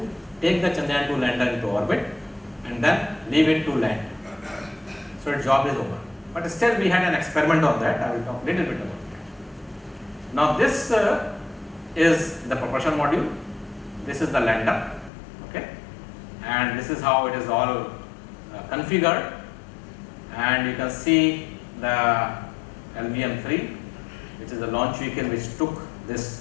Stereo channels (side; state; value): right; drops out; at 15.1 s